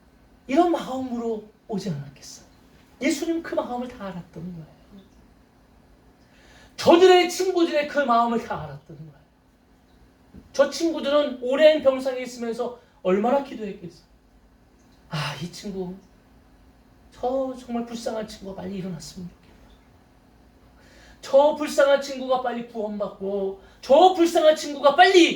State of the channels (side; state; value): both; identical; correlation 1.00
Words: 이런 마음으로 오지 않았겠어요? 예수님 그 마음을 다 알았던 거예요. 저들의 친구들의 그 마음을 다 알았던 거예요. 저 친구들은 오랜 병상에 있으면서 얼마나 기도했겠어요. 이 친구, 저 정말 불쌍한 친구가 빨리 일어났으면 좋겠다. 저 불쌍한 친구가 빨리 구원받고, 저 불쌍한 친구가